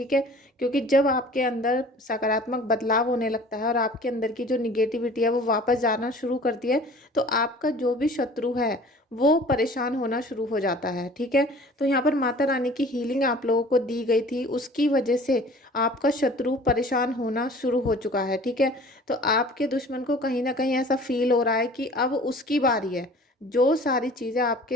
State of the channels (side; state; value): both; normal; correlation 0.47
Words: है, क्योंकि जब आपके अंदर सकारात्मक बदलाव होने लगता है और आपके अंदर की जो निगेटिविटी है वो वापस जाना शुरू करती है, तो आपका जो भी शत्रु है वो परेशान होना शुरू हो जाता है। ठीक है, तो यहाँ पर माता रानी की हीलिंग आप लोगों को दी गई थी, उसकी वजह से आपका शत्रु परेशान होना शुरू हो चुका है। ठीक है, तो आपके दुश्मन को कहीं ना कहीं ऐसा फील हो रहा है कि अब उसकी बारी है। जो सारी चीज़ें